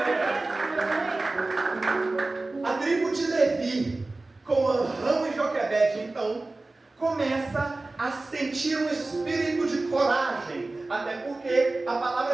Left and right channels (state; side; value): quieter; left; 3.1 dB